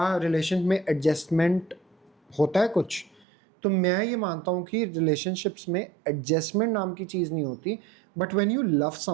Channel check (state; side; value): drops out; left; at 3.2 s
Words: रिलेशन में एडजस्टमेंट होता है कुछ। तो मैं ये मानता हूँ कि रिलेशनशिप्स में एडजस्टमेंट नाम की चीज़ नहीं होती, but when you love